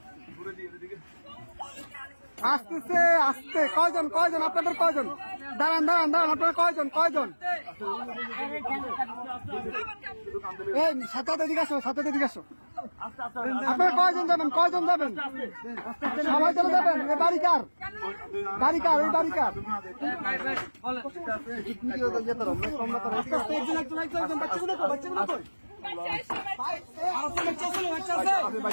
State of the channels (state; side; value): inverted; both; correlation -1.00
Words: আসতেছে, আসতে কয়জন, কয়জন আপনাদের, কয়জন, দাঁড়ান দাঁড়ান দাঁড়ান, আপনারা কয়জন, কয়জন, এই সাথে এদিকে আসো, সাথে এদিকে আসো, আপনারা কয়জন যাবেন, কয়জন যাবেন, সবাই চলে যাবেন। এ বাড়ি কার, বাড়ি কার, এই বাড়ি কার,